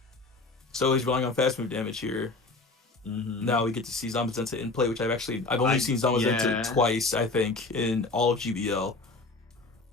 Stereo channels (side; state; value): right; quieter; 3.5 dB